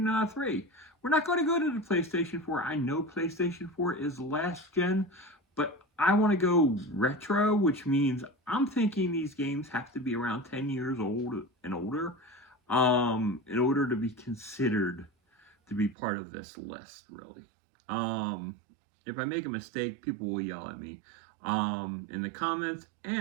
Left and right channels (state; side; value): drops out; left; at 16.0 s